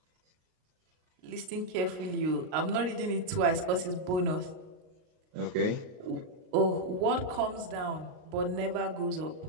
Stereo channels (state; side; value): late; left; 38 ms